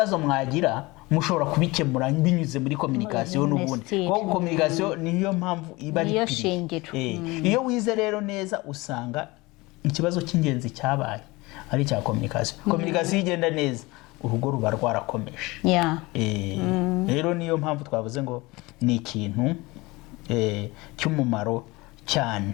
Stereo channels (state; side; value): quieter; right; 22.7 dB